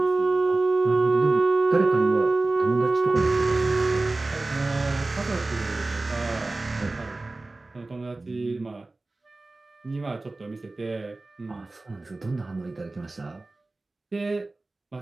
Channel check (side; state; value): left; quieter; 3.2 dB